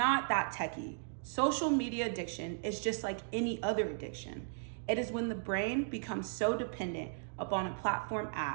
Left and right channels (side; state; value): left; silent; digital silence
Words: that techy. Social media addiction is just like any other addiction. It is when the brain becomes so dependent upon a platform